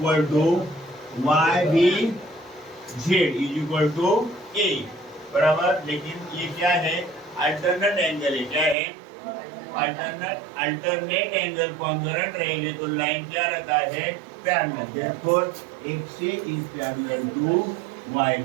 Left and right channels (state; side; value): drops out; left; at 8.8 s